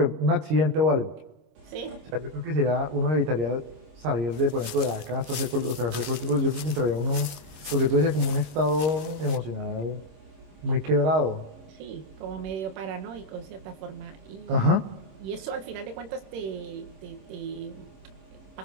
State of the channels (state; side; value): late; left; 25 ms